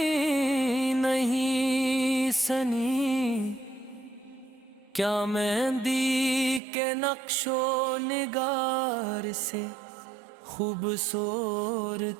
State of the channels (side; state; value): left; drops out; at 6.6 s